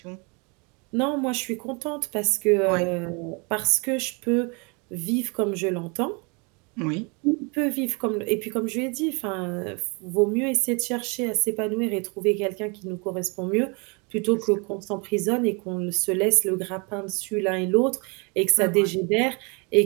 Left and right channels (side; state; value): left; quieter; 31.8 dB